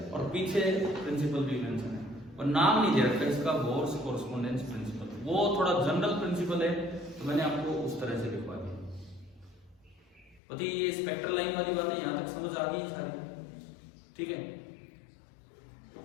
और पीछे प्रिंसिपल भी मेंशन है, और नाम नहीं दे रखा इसका, बोर्स कोरेस्पोंडेंस प्रिंसिपल। वो थोड़ा जनरल प्रिंसिपल है, तो मैंने आपको उस तरह से लिखवा दिया। पति ये स्पेक्ट्रल लाइन वाली बात है, यहाँ तक समझ आ गई सारी, ठीक है।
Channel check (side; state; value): right; drops out; at 10.4 s